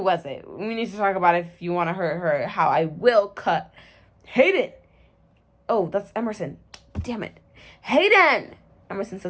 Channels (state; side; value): identical; both; correlation 1.00